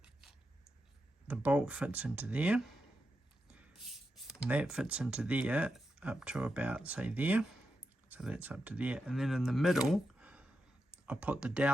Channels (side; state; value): both; normal; correlation 0.87